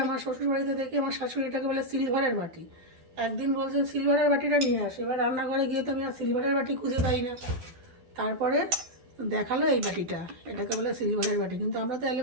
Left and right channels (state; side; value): late; left; 12 ms